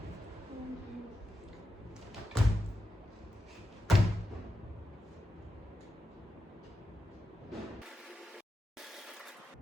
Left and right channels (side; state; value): both; normal; correlation 0.88